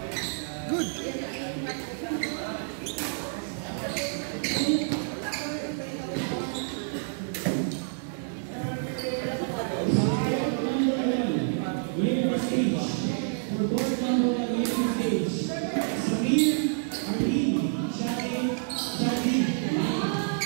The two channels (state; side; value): silent; left; digital silence